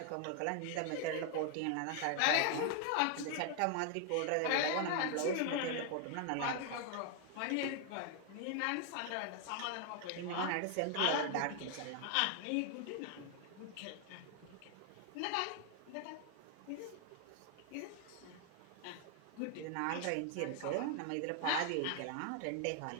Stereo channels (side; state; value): both; different; correlation 0.00